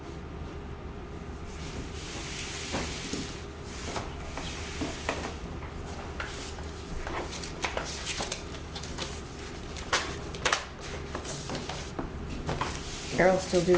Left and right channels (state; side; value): identical; both; correlation 1.00